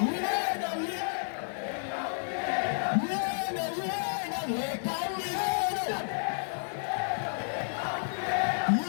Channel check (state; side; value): silent; right; digital silence